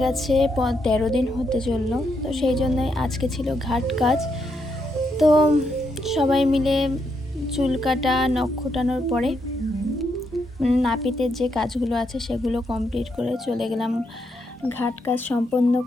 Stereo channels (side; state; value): both; normal; correlation 0.79